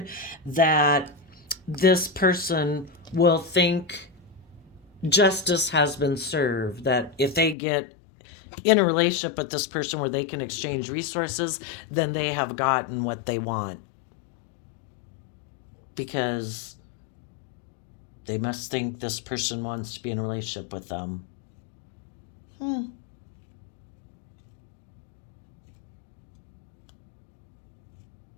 that this person will think justice has been served, that if they get in a relationship with this person where they can exchange resources, then they have gotten what they want, because they must think this person wants to be in a relationship with them.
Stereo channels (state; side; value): drops out; right; at 7.6 s